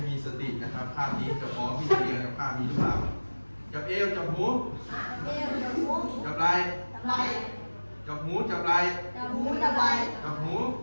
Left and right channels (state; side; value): inverted; both; correlation -1.00